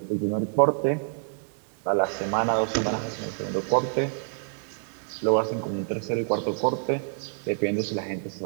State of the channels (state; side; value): silent; left; digital silence